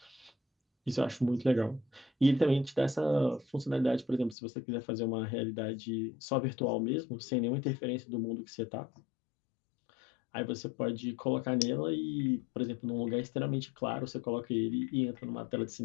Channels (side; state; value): right; drops out; at 4.4 s